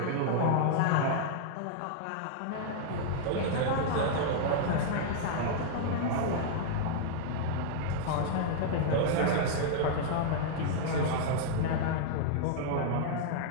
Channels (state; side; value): different; both; correlation -0.01